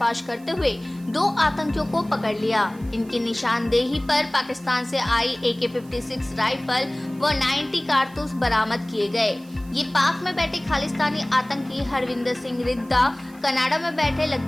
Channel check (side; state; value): right; noise; hiss, 26 dB below the sound